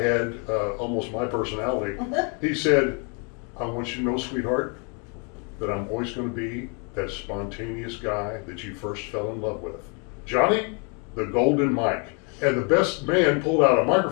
almost my personality. He said, I want you to know, sweetheart, that I'm always going to be that spontaneous guy that you first fell in love with. Johnny, the golden mic. And the best man pulled out a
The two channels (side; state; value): right; quieter; 36.0 dB